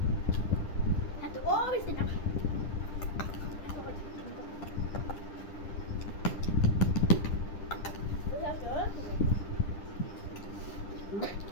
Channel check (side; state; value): right; late; 10 ms